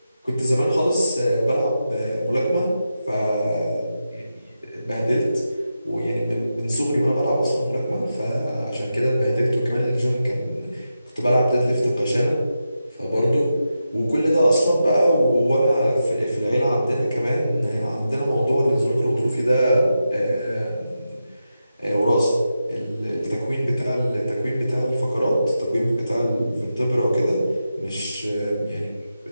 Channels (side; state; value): both; inverted; correlation -0.89